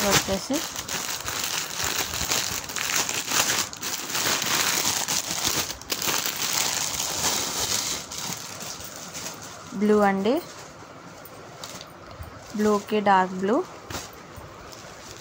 వచ్చేసి బ్లూ అండి. బ్లూకి డార్క్ బ్లూ.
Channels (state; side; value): identical; both; correlation 1.00